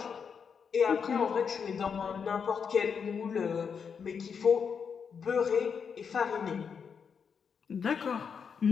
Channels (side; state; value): right; quieter; 6.5 dB